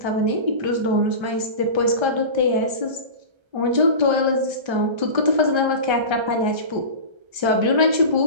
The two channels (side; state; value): left; late; 1.3 ms